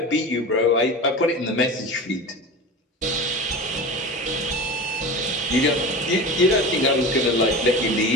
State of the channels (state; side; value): normal; both; correlation 0.31